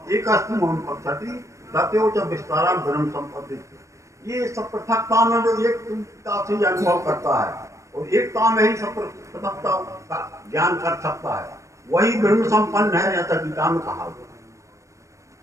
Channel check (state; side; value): late; left; 0.15 ms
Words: एक अस्तु पक्षति दत्यो च विस्तारा धर्म संपत्ति। ये सब पृथकता में जो एकता से अनुभव करता है और एकता में ही सब पृथकता का ज्ञान कर सकता है, वही ब्रह्म संपन्न है, ऐसा गीता में कहा हुआ।